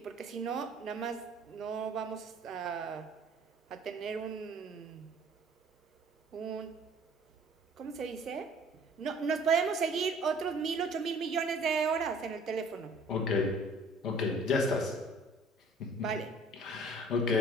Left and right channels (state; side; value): normal; both; correlation 0.52